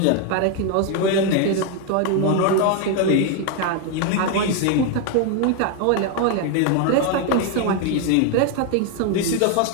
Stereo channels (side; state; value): both; different; correlation 0.01